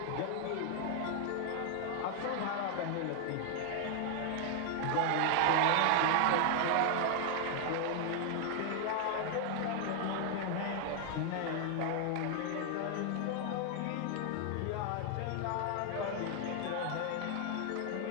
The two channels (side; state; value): both; different; correlation 0.00